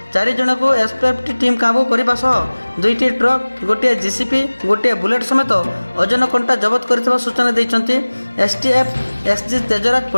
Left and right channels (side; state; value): both; inverted; correlation -1.00